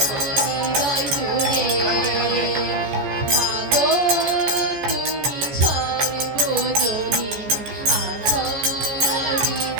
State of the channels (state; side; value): late; left; 14 ms